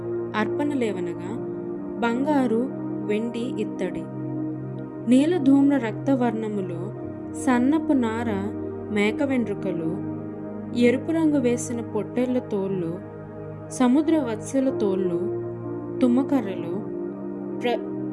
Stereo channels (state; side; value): identical; both; correlation 1.00